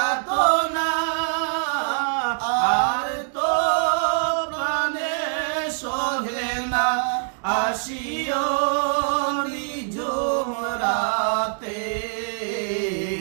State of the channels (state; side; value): silent; left; digital silence